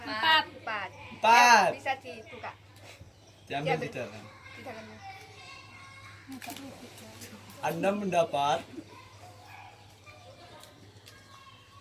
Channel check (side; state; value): both; identical; correlation 1.00